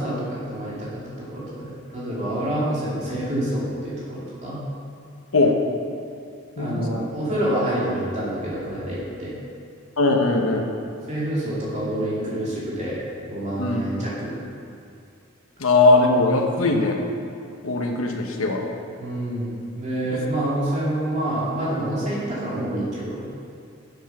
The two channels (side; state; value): both; normal; correlation 0.17